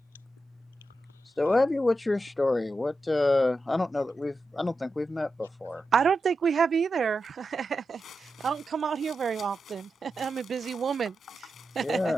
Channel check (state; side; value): normal; both; correlation 0.89